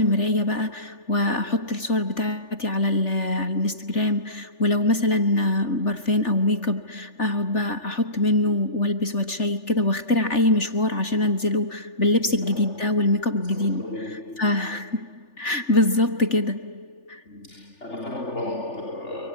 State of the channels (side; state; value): right; late; 3.4 ms